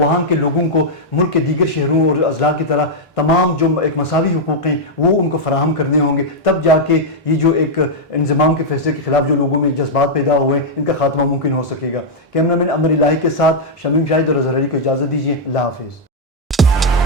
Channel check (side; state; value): both; normal; correlation -0.04